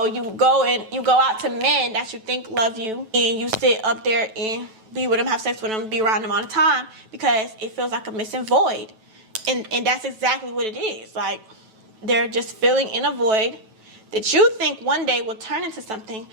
you go out to men that you think love you, and you sit up there and be with them, have sex with them, be around them all the time because it feels like a missing void. And that's exactly what it is. Like, they're just filling in a void that you think one day will turn into something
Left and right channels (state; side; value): late; left; 9.1 ms